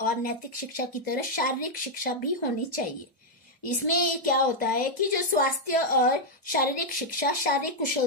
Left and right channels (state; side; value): normal; both; correlation -0.02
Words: और नैतिक शिक्षा की तरह शारीरिक शिक्षा भी होनी चाहिए। इसमें क्या होता है कि जो स्वास्थ्य और शारीरिक शिक्षा शारीरिक